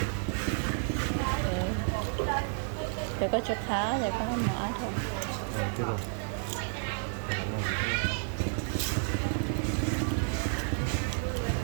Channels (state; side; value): silent; left; 57 dB below the other